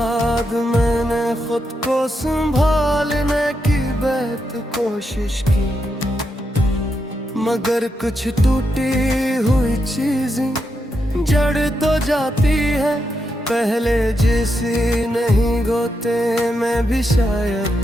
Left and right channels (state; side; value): normal; both; correlation 0.83